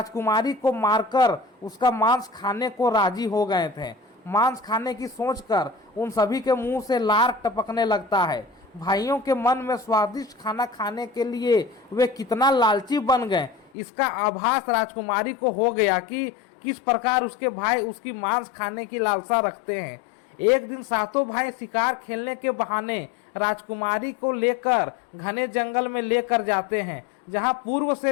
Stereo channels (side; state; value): right; drops out; at 13.7 s